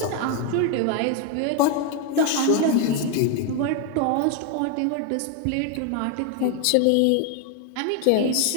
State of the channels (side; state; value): both; different; correlation 0.01